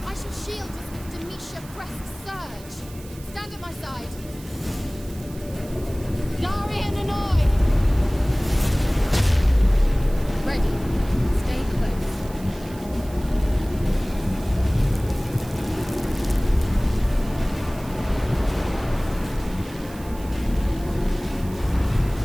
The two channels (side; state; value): right; noise; hiss, 20 dB below the sound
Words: I shall shield us with Demetia Crest's surge. Stand at my side. Darian and I! Ready. Stay close.